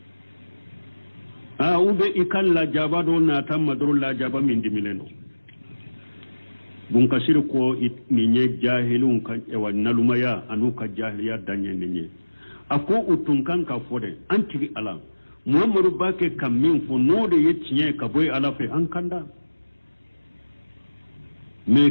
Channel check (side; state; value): both; inverted; correlation -1.00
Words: ube ikan la jaba do na tamma do la jaba min dimilendo bun kasir ko ni nye jahilun kan ewa nalumaya anu ka jahiliya danye ni ako utun kan ka fode anti ala muhammadu bake kam min fo node yecciye ka boy ala fe an kanda me